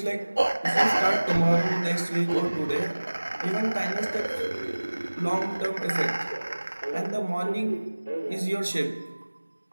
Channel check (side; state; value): both; inverted; correlation -1.00